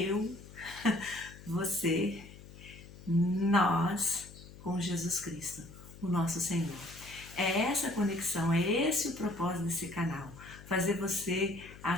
você, nós, com Jesus Cristo, o nosso Senhor. É essa conexão, é esse o propósito desse canal, fazer você,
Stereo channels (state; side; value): noise; left; hum, 18 dB below the sound